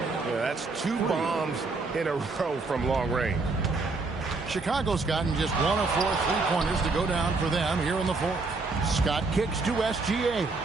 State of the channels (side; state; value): left; quieter; 3.8 dB